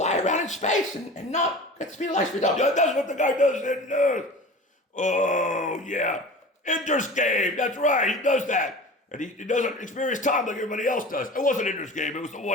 around in space and not get the speed of light speed up. Yeah, that's what the guy does in, oh, yeah, Ender's Game. That's right, he does that. And he doesn't experience time like everybody else does. It wasn't Ender's Game, it was the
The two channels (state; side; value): normal; both; correlation 0.36